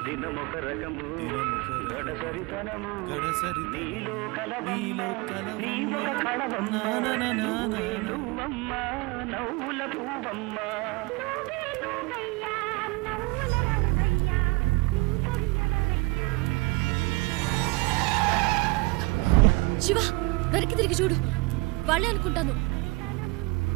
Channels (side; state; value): left; quieter; 25.1 dB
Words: శివ వెనక్కి తిరిగి చూడు వాళ్ళే అనుకుంటాను